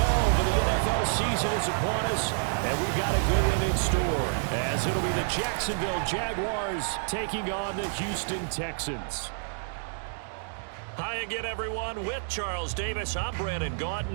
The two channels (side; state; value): left; silent; digital silence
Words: of the NFL season is upon us, and we've got a good one in store, as it'll be the Jacksonville Jaguars taking on the Houston Texans. Hi again, everyone. With Charles Davis, I'm Brandon